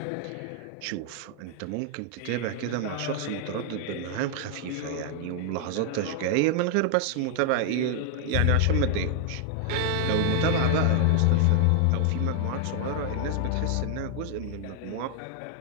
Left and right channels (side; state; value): both; different; correlation 0.00